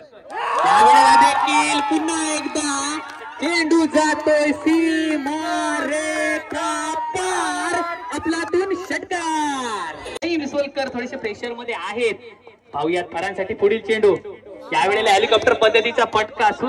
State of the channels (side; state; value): both; identical; correlation 1.00